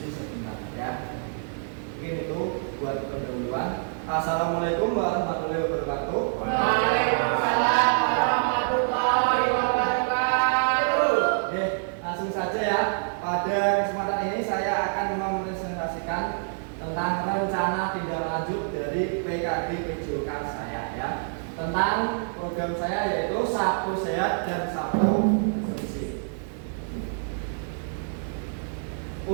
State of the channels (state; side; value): silent; left; digital silence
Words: sebentar ya. Mungkin itu buat pendahuluan. Assalamualaikum warahmatullahi wabarakatuh. Waalaikumsalam warahmatullahi wabarakatuh. Oke, langsung saja ya. Pada kesempatan ini saya akan mempresentasikan tentang rencana tindak lanjut dari PKD PJOK saya ya. Tentang program saya yaitu Sabtu Sehat dan Sabtu Bersih.